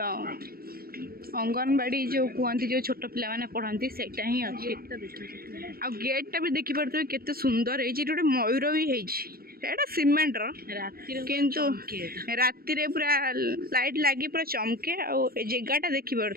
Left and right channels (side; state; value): left; late; 0.44 ms